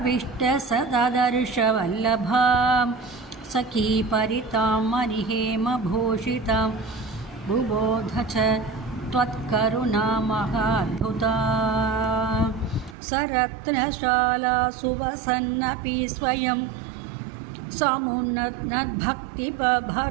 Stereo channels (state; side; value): drops out; left; at 13.0 s